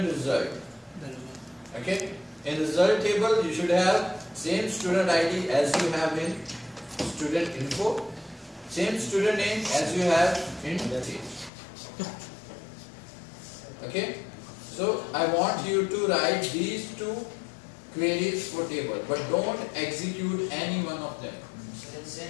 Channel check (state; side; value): drops out; right; at 11.5 s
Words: result. Okay? In result table, you should have same student ID as you have in student info, same student name as you have in page. Okay? So I want you to write these two queries for table, but don't execute any one of them.